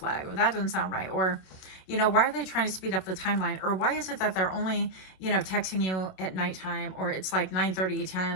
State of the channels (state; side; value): late; right; 27 ms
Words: or that doesn't sound right. Or, you know, why are they trying to speed up the timeline? Or why is it that they're only, you know, texting you at nighttime, or it's like 9:30, 10,